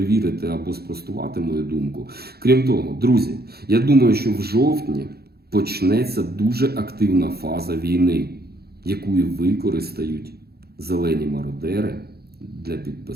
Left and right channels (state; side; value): late; left; 0.46 ms